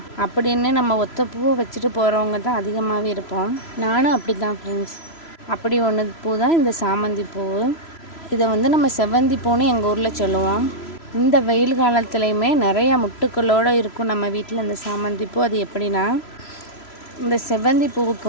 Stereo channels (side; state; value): right; late; 3.0 ms